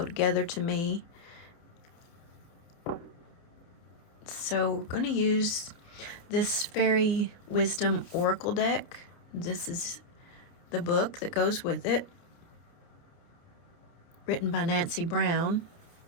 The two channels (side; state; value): right; late; 29 ms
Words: together to me. So we're going to use this Fairy Wisdom Oracle deck. This is the book that goes with it, written by Nancy Brown